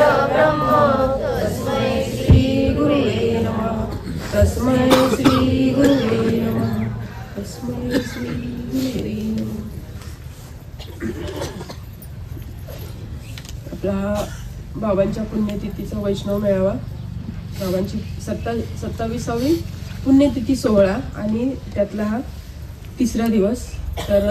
तस्मै श्री गुरुवे नमः. तस्मै श्री गुरुवे नमः. तस्मै श्री गुरुवे नमः. आपला बाबांच्या पुण्यतिथीचा वैष्णव मेळावा, बाबांची 27वी पुण्यतिथी सोहळा आणि त्यातला हा तिसरा दिवस.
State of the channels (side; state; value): both; identical; correlation 1.00